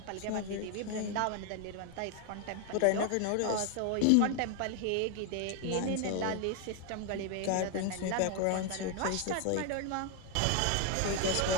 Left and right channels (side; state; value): both; different; correlation 0.01